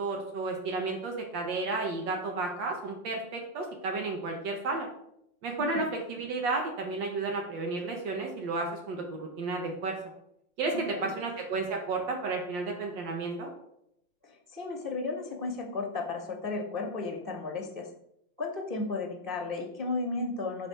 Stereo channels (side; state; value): left; late; 5.6 ms